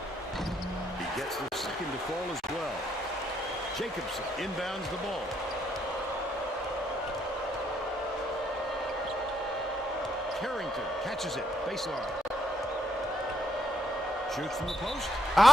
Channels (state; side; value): normal; both; correlation 0.75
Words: Gets the second to fall as well. Jacobson inbounds the ball. Carrington catches it. Baseline. Shoots from the post.